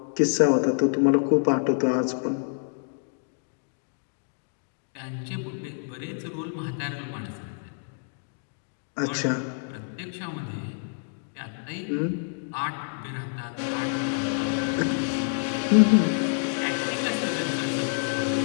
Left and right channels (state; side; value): silent; right; digital silence